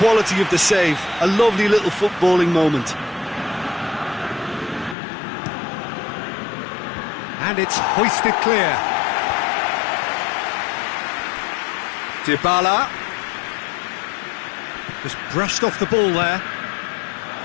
of the save. A lovely little footballing moment. And it's hoisted clear. Dybala just brushed off the ball there.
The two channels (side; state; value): right; drops out; at 5.0 s